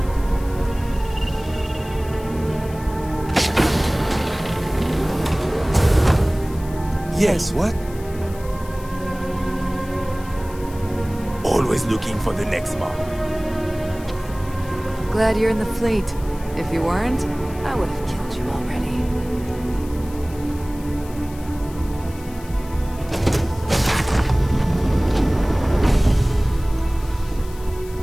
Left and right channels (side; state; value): left; noise; hiss, 20 dB below the sound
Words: Yes, what? Always looking for the next mark. Glad you're in the fleet. If you weren't, I would have killed you already.